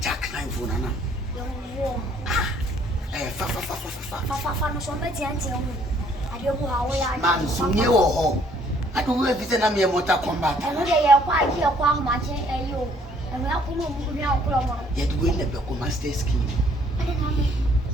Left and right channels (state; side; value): normal; both; correlation 0.62